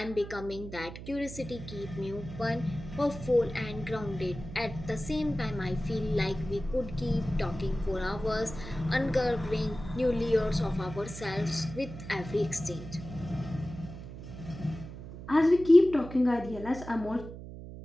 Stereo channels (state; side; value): noise; right; hum, 12 dB below the sound